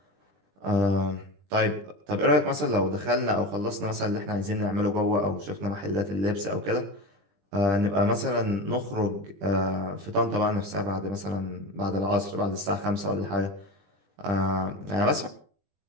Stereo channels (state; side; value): late; left; 20 ms